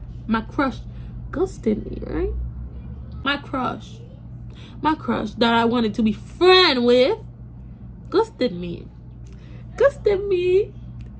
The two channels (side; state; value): both; identical; correlation 1.00